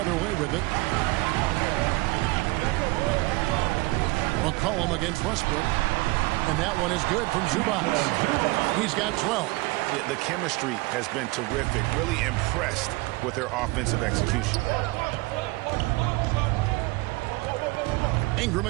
way with it. McCollum against Westbrook. And that one is good from Zubac. He's got 12. Yeah, the chemistry has been terrific. Really impressed with their offensive execution. Ingram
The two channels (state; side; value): quieter; left; 23.5 dB